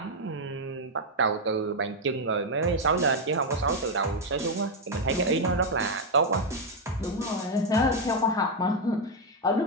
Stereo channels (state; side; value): normal; both; correlation 0.02